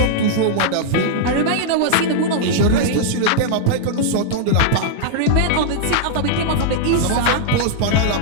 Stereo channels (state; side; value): different; both; correlation -0.01